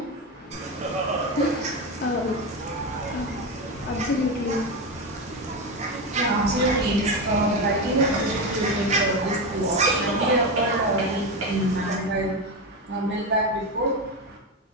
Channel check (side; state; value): both; normal; correlation 0.15